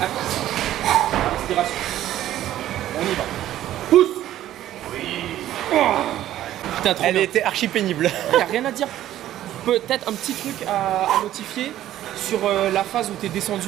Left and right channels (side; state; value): left; quieter; 12.9 dB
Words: actif. Respiration. On y va. Pousse. Oui. Putain, trop Elle bien. était archi pénible. Il n'y a rien à dire. Peut-être un petit truc à notifier sur la phase où tu es